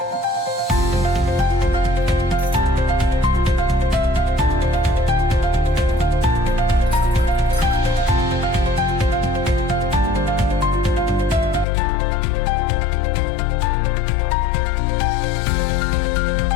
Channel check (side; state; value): right; drops out; at 11.7 s